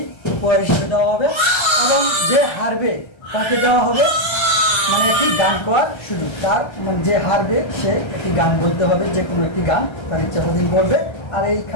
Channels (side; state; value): right; late; 1.3 ms